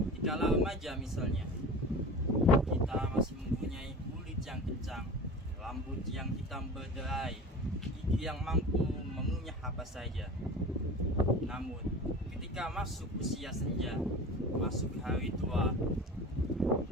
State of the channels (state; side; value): normal; both; correlation 0.35